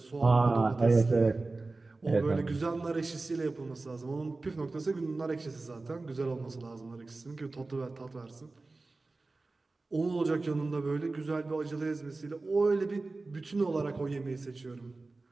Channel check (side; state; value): left; quieter; 3.4 dB